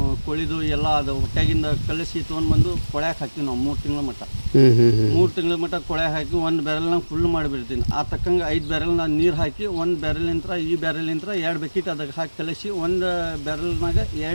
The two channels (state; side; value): inverted; both; correlation -1.00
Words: ಕೋಳಿದು ಎಲ್ಲ ಅದು ಹೊಟ್ಟೆಗಿಂದ ಕಲಿಸಿ ತೊಗೊಂಡ್ಬಂದು ಕೊಳ್ಯಾಕೆ ಹಾಕ್ತೀವಿ ನಾವು 3 ತಿಂಗಳ ಮಟ್ಟ. 3 ತಿಂಗಳ ಮಟ್ಟ ಕೊಳ್ಯಾಕೆ ಹಾಕಿ 1 ಬ್ಯಾರಲ್ನಾಗ ಫುಲ್ ಮಾಡಿಬಿಡ್ತೀನಿ. ಆ ತಕ್ಕಂಗೆ 5 ಬ್ಯಾರಲ್ನಾಗ ನೀರು ಹಾಕಿ 1 ಬ್ಯಾರಲಿಂತ್ರ ಈ ಬ್ಯಾರಲಿಂತ್ರ 2 ಬಕೆಟ್ ಅದಕ್ಕೆ ಹಾಕಿ ಕಲಿಸಿ 1 ಬ್ಯಾರಲ್ನಾಗ